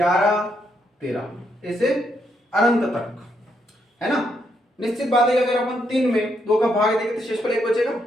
13 ऐसे अनंत तक, है ना। निश्चित बात है कि अगर अपन 3 में 2 का भाग देंगे तो शेषफल 1 बचेगा।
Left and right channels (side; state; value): both; normal; correlation 0.77